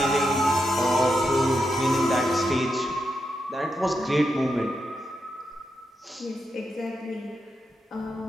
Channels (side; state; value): both; normal; correlation 0.85